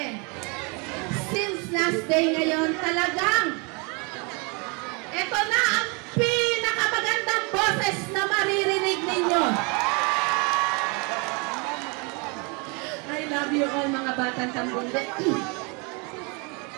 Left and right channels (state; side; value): quieter; left; 31.7 dB